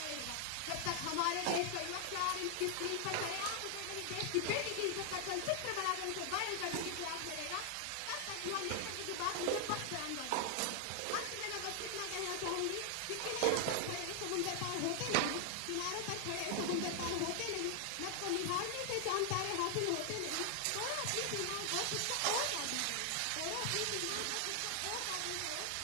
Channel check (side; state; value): both; different; correlation 0.00